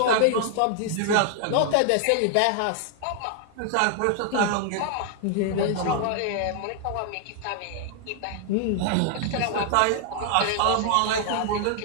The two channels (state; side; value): different; both; correlation 0.00